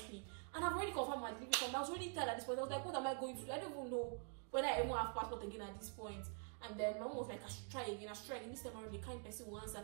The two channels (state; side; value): quieter; left; 39.6 dB